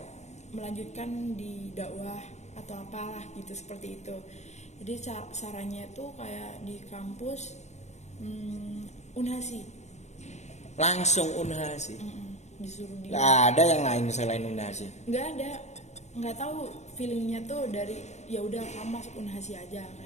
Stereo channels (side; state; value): right; late; 0.33 ms